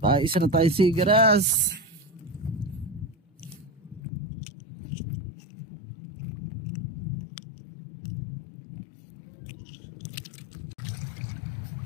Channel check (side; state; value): right; drops out; at 4.0 s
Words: Isa na tayo sigaras.